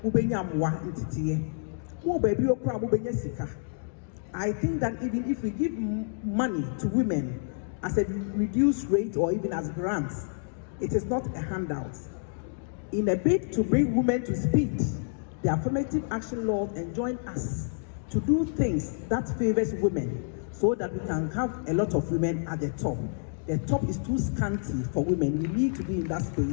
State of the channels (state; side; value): silent; right; digital silence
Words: mo benya moa ntitiye mo baby okura mo benya sika. I think that even if we give money to women as a reduced rate or even as grants, it is not a handout. In a bid to bring women to speed, the affirmative action laws enjoin us to do things that favors women so that we can have a lot of women at the top. The top is too scanty for women. We need to be in that